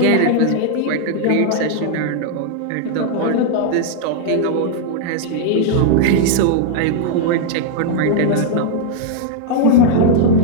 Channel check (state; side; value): different; both; correlation -0.01